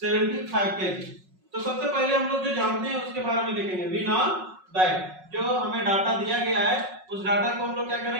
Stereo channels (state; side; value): late; left; 5.4 ms